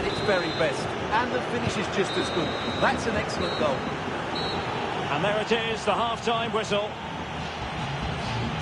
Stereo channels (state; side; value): identical; both; correlation 1.00